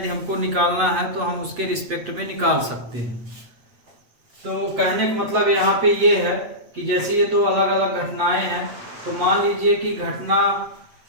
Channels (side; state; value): left; late; 8.2 ms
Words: हमको निकालना है तो हम उसके रिस्पेक्ट में निकाल सकते हैं। तो कहने का मतलब यहाँ पे ये है कि जैसे ये 2 अलग अलग घटनाएं हैं, तो मान लीजिए कि घटना